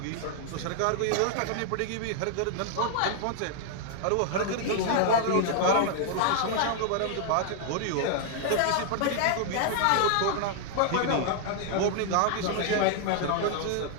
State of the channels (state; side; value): different; both; correlation 0.00